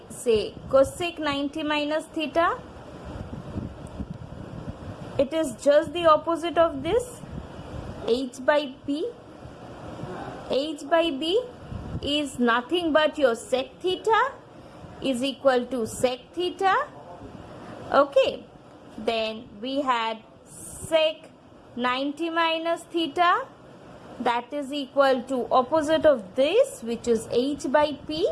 say cosec 90 minus theta, it is just the opposite of this, h by p. H by b is nothing but your sec theta is equal to sec theta. Okay, then we had sec 90 minus theta, that is equal to opposite of this, which is h by p,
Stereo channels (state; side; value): identical; both; correlation 1.00